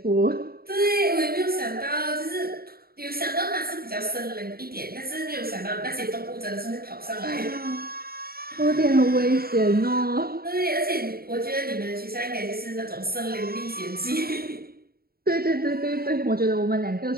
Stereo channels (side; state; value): left; late; 0.44 ms